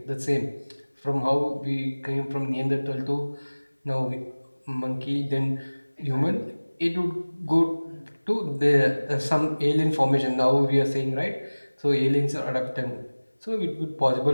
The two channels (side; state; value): both; inverted; correlation -1.00